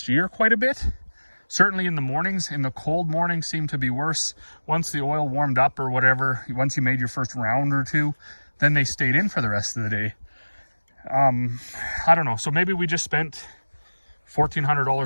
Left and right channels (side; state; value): both; inverted; correlation -1.00